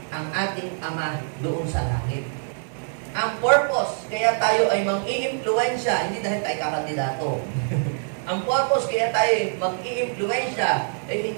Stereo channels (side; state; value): left; silent; digital silence